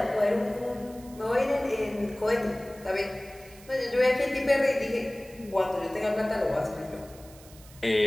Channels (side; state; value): right; noise; hiss, 22 dB below the sound